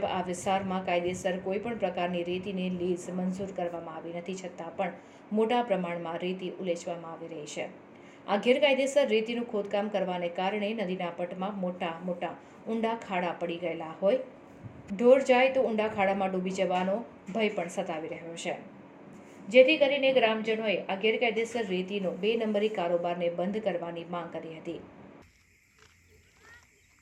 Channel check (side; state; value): both; identical; correlation 1.00